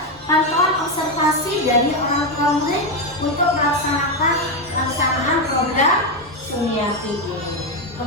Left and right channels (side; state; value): both; normal; correlation 0.08